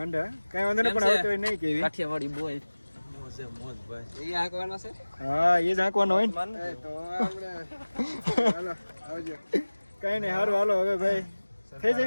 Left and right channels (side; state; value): both; inverted; correlation -1.00